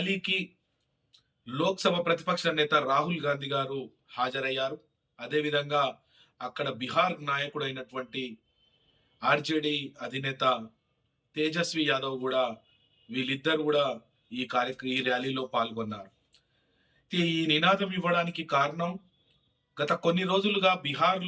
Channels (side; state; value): both; identical; correlation 1.00